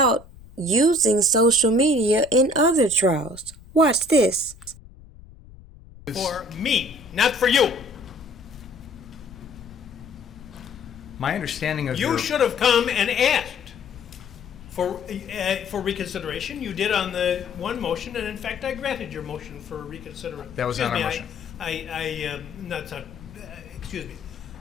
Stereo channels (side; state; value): left; noise; rumble, 20 dB below the sound